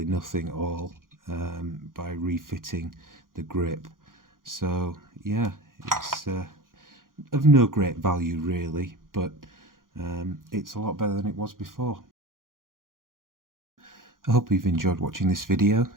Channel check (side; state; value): left; late; 0.90 ms